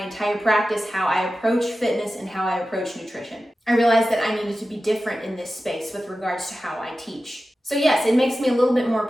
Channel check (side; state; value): both; normal; correlation 0.94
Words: entire practice, how I approach fitness and how I approach nutrition. I realized that I needed to be different in this space with regards to how I teach. So yes, it makes me a little bit more